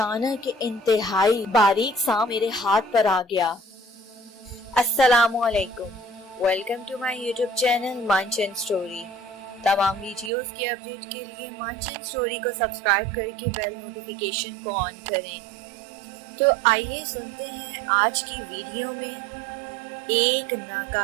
انتہائی باریک سانپ میرے ہاتھ پر آ گیا۔ السلام علیکم، welcome to my YouTube channel مانچن سٹوری۔ تمام ویڈیوز کی اپڈیٹ کے لیے مانچن سٹوری کو سبسکرائب کر کے بیل نوٹیفیکیشن کو آن کریں۔ تو آئیے سنتے ہیں آج کی ویڈیو میں ایک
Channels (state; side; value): drops out; left; at 10.3 s